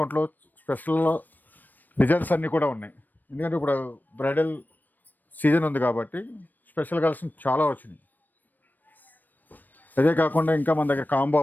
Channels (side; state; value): right; late; 0.088 ms